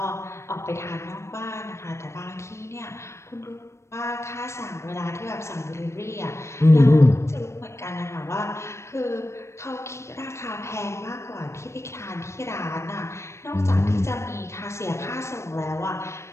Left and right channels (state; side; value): late; right; 0.13 ms